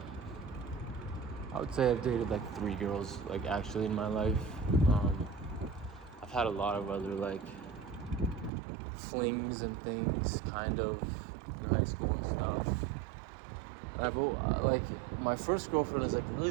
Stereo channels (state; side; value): drops out; left; at 8.5 s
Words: I would say I've dated, like, 3 girls, like, actually in my life. I've had a lot of other like flings and things, kind of, in high school and stuff. And like, my first girlfriend is like